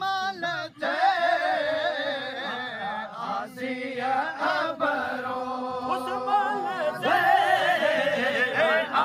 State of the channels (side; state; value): both; identical; correlation 1.00